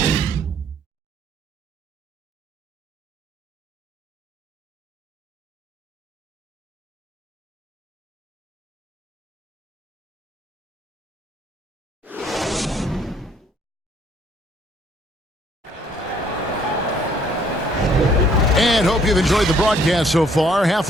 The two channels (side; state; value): both; normal; correlation 0.63